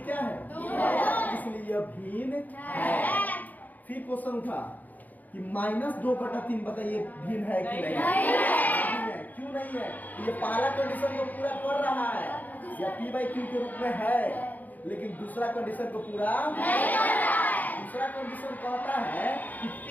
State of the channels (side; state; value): right; late; 0.082 ms